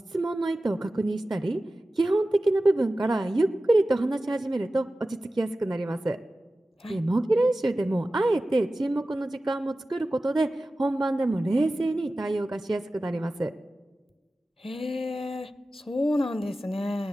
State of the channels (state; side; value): normal; both; correlation 0.95